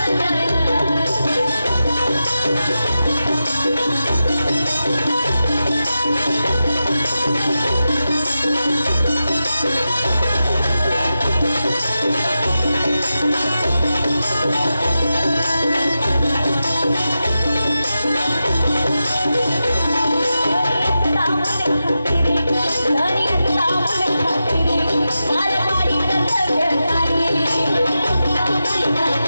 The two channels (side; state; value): both; inverted; correlation -0.91